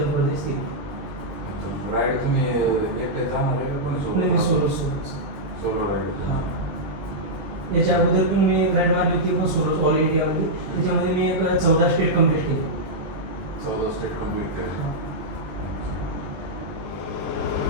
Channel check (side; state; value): left; late; 20 ms